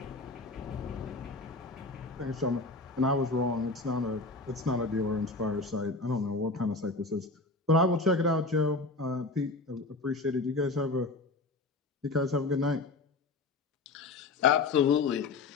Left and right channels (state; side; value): quieter; right; 3.5 dB